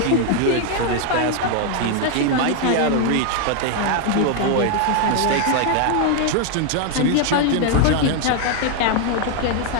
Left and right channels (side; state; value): both; different; correlation 0.00